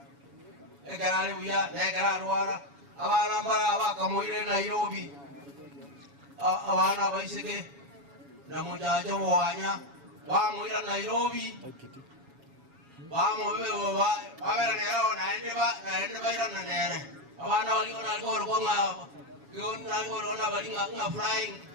ekarali uya ekarali wara abana bara bakamuire Nairobi abana baiseke na mujajo wanya bamuira Nairobi bamuwe babera nero naende ba ira nere abana wali ona gor ko nga yon na gor ona bali nga flying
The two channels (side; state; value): left; late; 7.2 ms